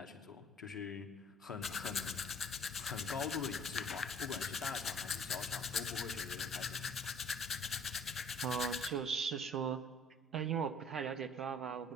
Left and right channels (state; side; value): normal; both; correlation 0.53